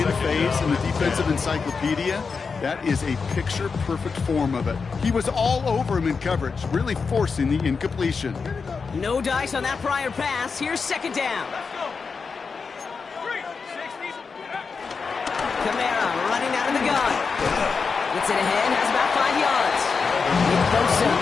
phase in the defensive encyclopedia, that is a picture-perfect form of it. He was all over him in coverage, really forcing the incompletion. No dice on that prior pass. Here's second down. Kamara running out of the gun. Gets it ahead, has about 5 yards. Nick Bosa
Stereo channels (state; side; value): quieter; right; 5.1 dB